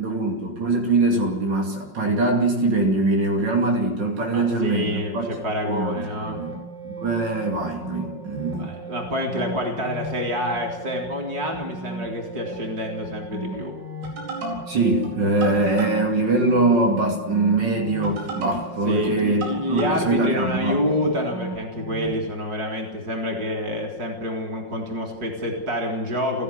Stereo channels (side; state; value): left; late; 5.5 ms